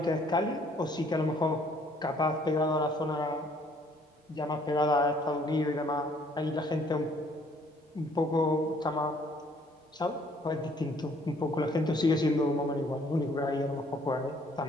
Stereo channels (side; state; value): both; normal; correlation 0.62